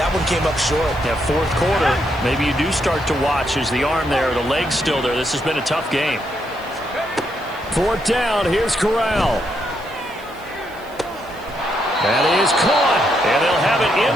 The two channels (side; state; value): right; noise; hiss, 25 dB below the sound